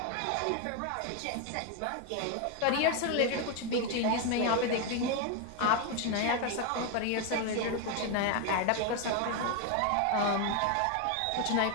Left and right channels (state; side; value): different; both; correlation 0.01